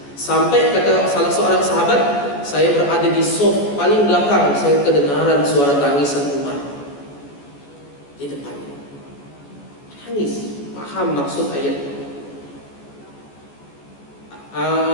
Sampai kata salah seorang sahabat, saya berada di sof paling belakang, saya kedengaran suara tangisan Umar di depannya. Nangis, paham maksud ayat.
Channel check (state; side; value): late; right; 14 ms